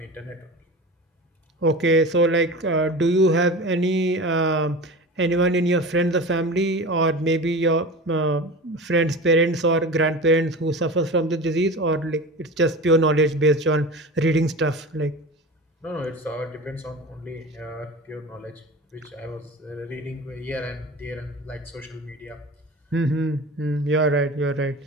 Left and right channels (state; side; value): normal; both; correlation 0.32